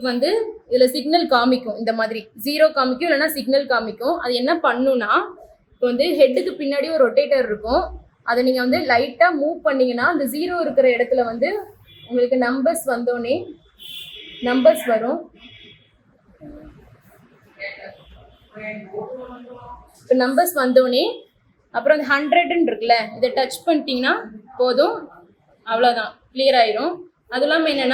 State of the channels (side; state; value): both; identical; correlation 1.00